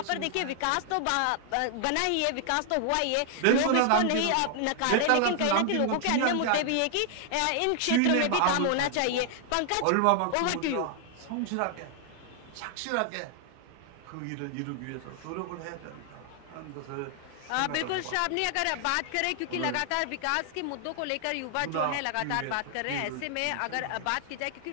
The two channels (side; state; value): both; different; correlation 0.00